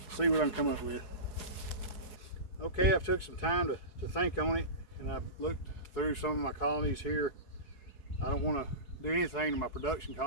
see what I can come up with. Okay, I've took some time to think on it, and I've looked through some of my colonies here. I don't want to do anything to my production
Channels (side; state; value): right; late; 4.7 ms